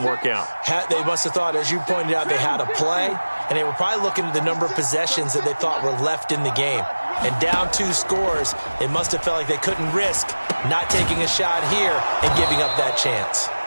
work out. They must have thought, as you pointed out, they had a play, and they were probably looking at the number of possessions that they thought were left in the game. And down 2 scores, they must have felt like they couldn't risk not taking a shot here and giving up that chance.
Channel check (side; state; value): both; inverted; correlation -1.00